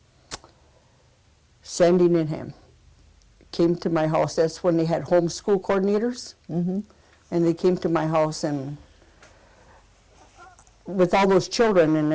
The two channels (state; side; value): identical; both; correlation 1.00